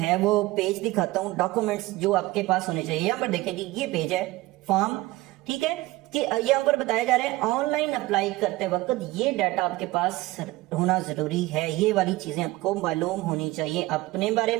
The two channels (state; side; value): quieter; left; 19.1 dB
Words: वो पेज दिखाता हूँ, डॉक्यूमेंट्स जो आपके पास होने चाहिए। यहाँ पर देखें जी ये पेज है फॉर्म, ठीक है, कि यहाँ पर बताया जा रहा है ऑनलाइन अप्लाई करते वक्त ये डाटा आपके पास होना जरूरी है। ये वाली चीजें आपको मालूम होनी चाहिए अपने बारे